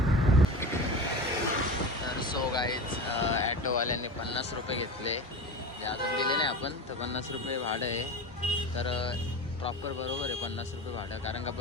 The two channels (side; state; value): both; normal; correlation 0.29